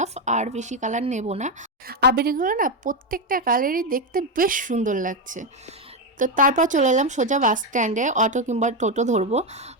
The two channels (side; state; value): both; normal; correlation 0.07